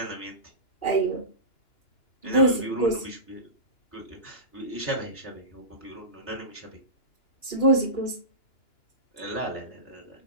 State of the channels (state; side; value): late; right; 2.9 ms